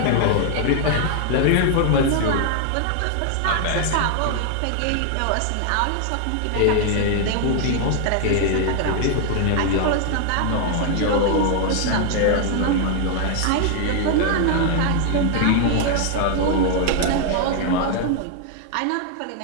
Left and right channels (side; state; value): both; different; correlation 0.00